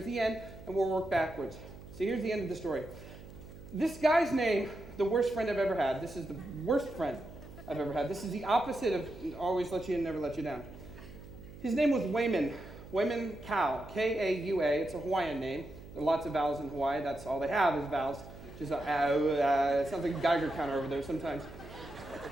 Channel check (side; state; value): right; noise; hum, 16 dB below the sound